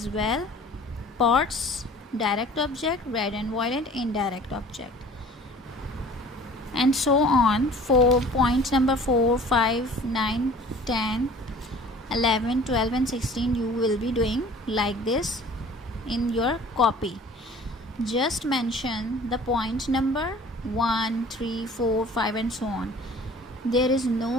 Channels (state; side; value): normal; both; correlation 0.47